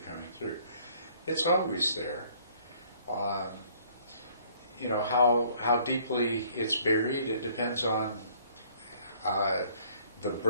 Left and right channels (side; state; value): both; inverted; correlation -0.60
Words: coming through. It's always there. How deeply it's buried, it depends on the